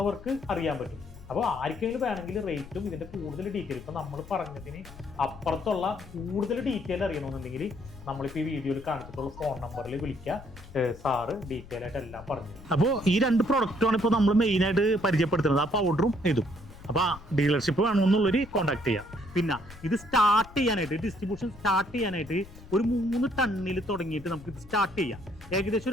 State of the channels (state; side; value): noise; left; rumble, 18 dB below the sound